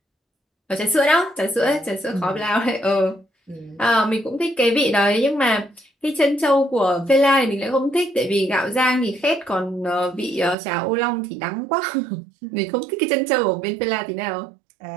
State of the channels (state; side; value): drops out; left; at 10.6 s